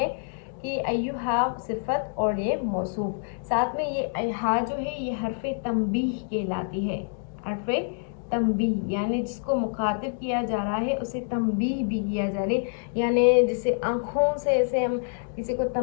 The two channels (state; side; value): silent; right; digital silence